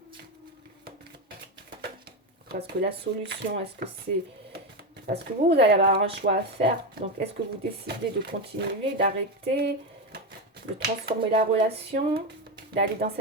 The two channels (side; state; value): both; normal; correlation 0.13